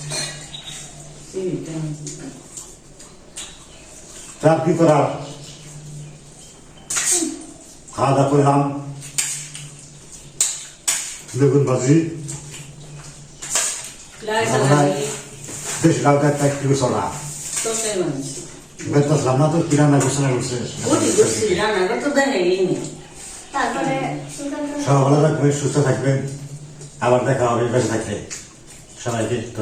তার কি করার, খাওয়া দাওয়া করলাম, বেগুন ভাজি, বেশ লাউ একটা একটু চলা বেতলাম না। তো কি রান্না করছে না করছে, তারপরে সব ভালো থাকবেন, সুস্থ থাকবেন, আবার দেখা হবে বেঁচে থাকলে। সবাইকে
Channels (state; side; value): identical; both; correlation 1.00